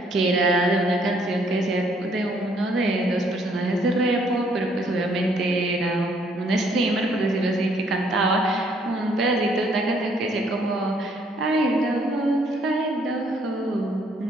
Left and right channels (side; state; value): both; normal; correlation 0.66